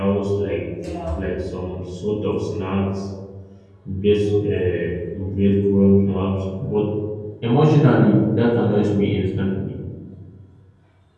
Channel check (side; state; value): both; identical; correlation 1.00